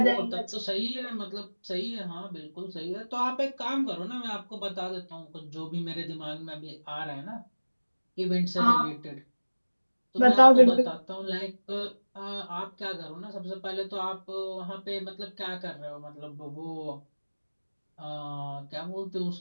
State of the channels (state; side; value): inverted; both; correlation -1.00